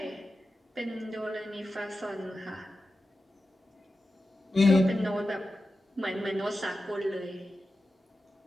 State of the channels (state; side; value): normal; both; correlation 0.92